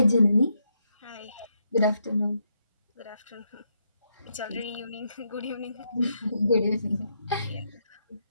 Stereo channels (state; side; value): inverted; both; correlation -0.79